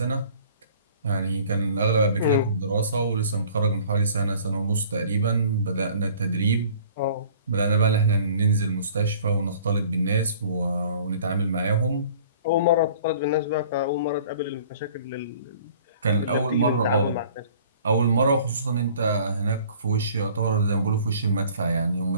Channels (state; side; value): inverted; both; correlation -0.51